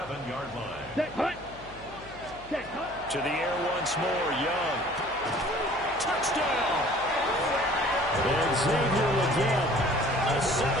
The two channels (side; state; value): left; noise; hum, 20 dB below the sound